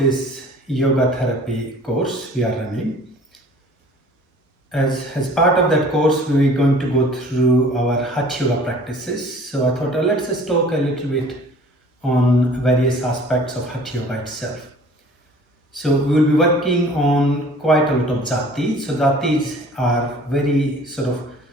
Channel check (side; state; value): both; normal; correlation 0.49